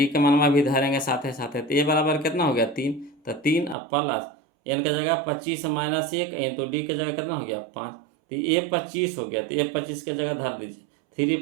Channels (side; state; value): left; drops out; at 3.8 s